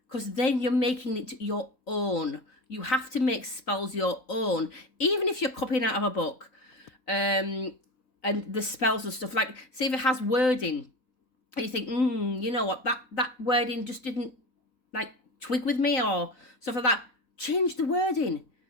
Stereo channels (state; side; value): late; right; 3.9 ms